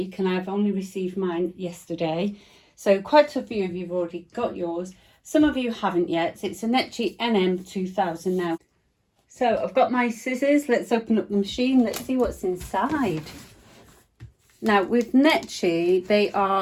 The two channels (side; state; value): both; identical; correlation 1.00